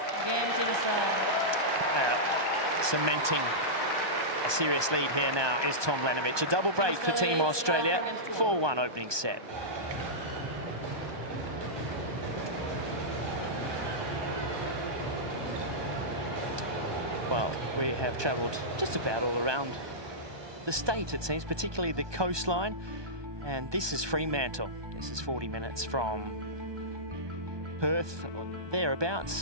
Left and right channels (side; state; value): left; late; 1.2 ms